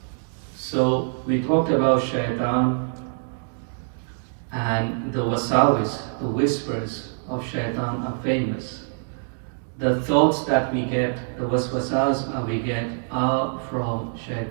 So we talked about shaitan and the wasawis, the whispers of shaitan are famous. The thoughts that we get, the waswasas we get are from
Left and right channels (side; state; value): left; silent; digital silence